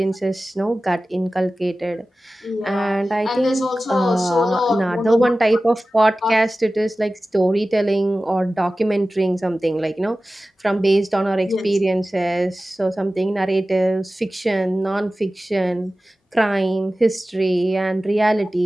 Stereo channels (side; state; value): both; normal; correlation 0.96